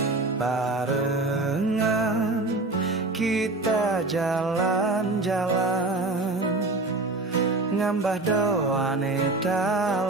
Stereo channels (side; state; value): left; quieter; 3.0 dB